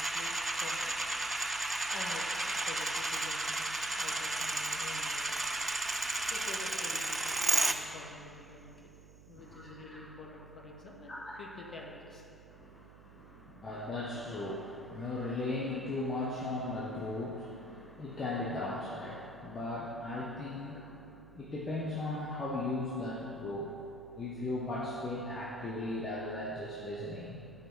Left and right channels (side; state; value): right; noise; hum, 20 dB below the sound